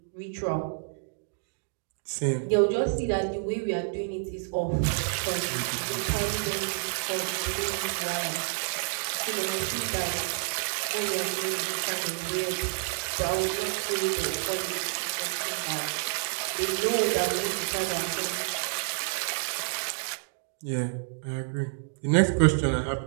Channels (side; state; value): left; silent; digital silence